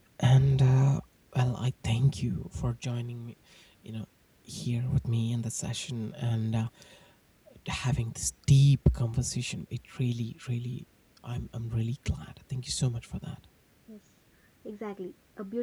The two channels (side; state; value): both; identical; correlation 1.00